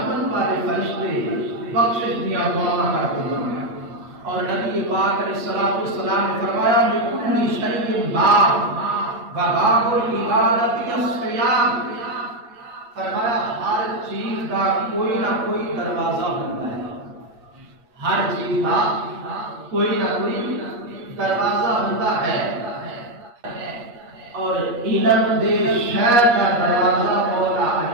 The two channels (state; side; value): late; left; 8.4 ms